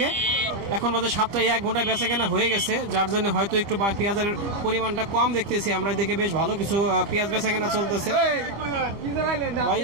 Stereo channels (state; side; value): late; left; 25 ms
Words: এখন বাজে 7টায়, 1 ঘন্টায় বেচা কেনা হয়ে গেছে, যার জন্য হয়তো একটু পেঁয়াজের পরিমাণটা কম দেখতেছি আমরা। এদিকে বেশ ভালো কিছু পেঁয়াজ বেচা কেনা চলতেছে। ভাই